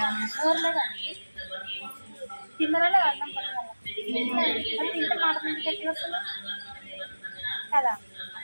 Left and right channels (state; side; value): inverted; both; correlation -1.00